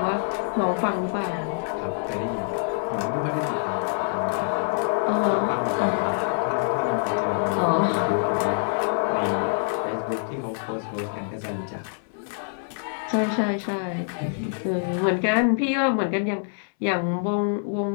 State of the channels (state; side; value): silent; right; 61 dB below the other